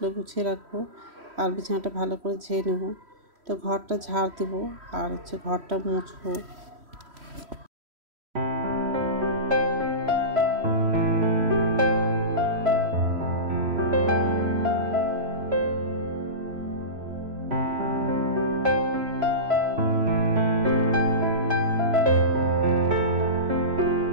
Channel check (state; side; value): late; left; 3.1 ms